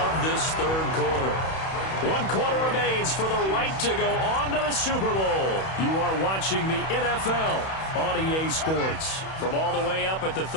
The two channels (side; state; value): right; late; 31 ms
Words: this 3rd quarter. 1 quarter remains for the right to go on to the Super Bowl. You are watching the NFL on EA Sports. From all the way up at the